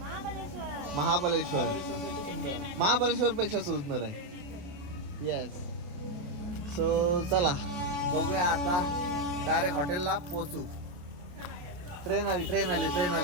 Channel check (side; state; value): left; late; 28 ms